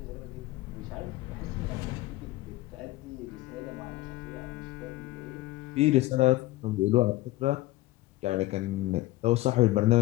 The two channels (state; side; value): quieter; right; 18.2 dB